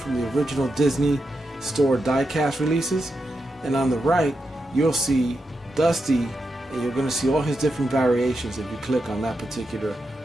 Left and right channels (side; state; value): both; normal; correlation 0.86